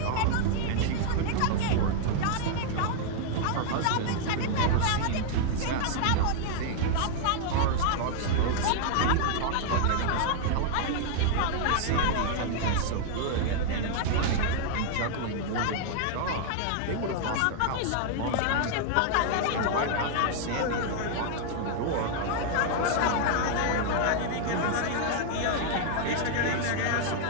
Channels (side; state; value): both; different; correlation -0.01